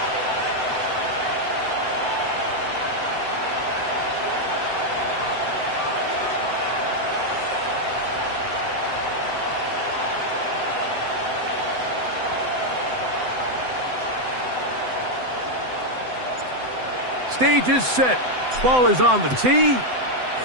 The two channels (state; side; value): late; left; 7.9 ms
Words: Stage is set. Ball is on the tee.